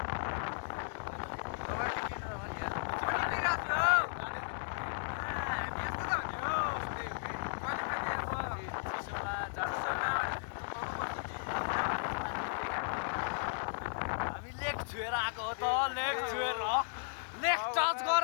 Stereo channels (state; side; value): silent; right; digital silence